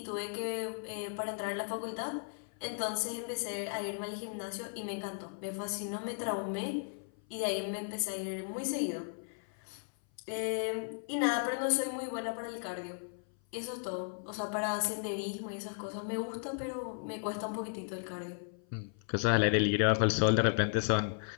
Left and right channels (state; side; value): silent; right; 54 dB below the other